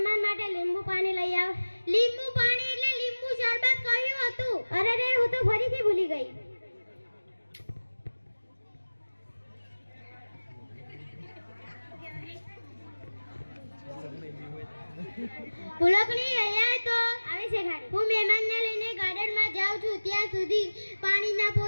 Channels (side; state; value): both; inverted; correlation -1.00